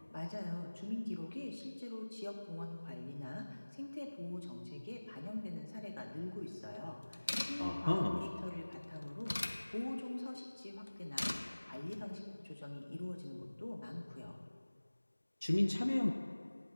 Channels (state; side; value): inverted; both; correlation -1.00